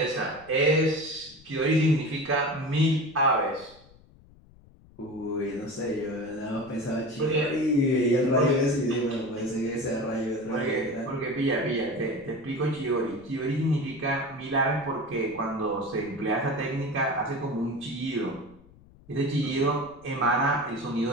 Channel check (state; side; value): noise; left; rumble, 25 dB below the sound